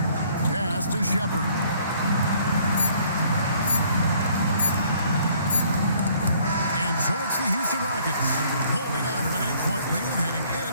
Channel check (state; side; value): inverted; both; correlation -0.61